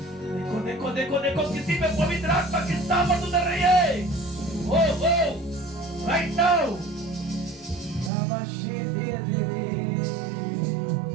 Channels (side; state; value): left; drops out; at 8.1 s